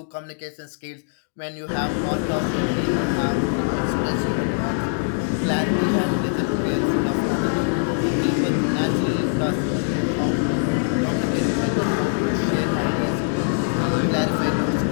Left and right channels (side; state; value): right; silent; digital silence